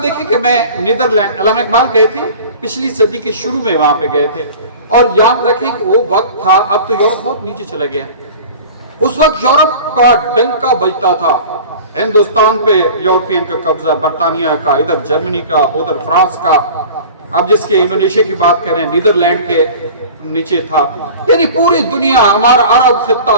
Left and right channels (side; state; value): both; inverted; correlation -0.40